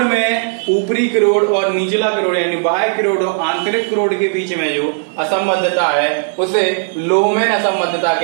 ऊपरी करोड़ और निचला करोड़ यानी बाह्य करोड़ और आंतरिक करोड़ के बीच में जो असंबद्धता है उसे लोहमैन असंबद्धता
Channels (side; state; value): left; silent; 60 dB below the other